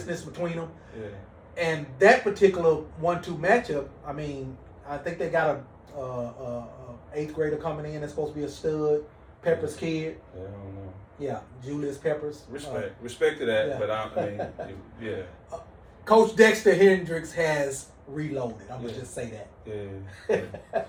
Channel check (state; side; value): identical; both; correlation 1.00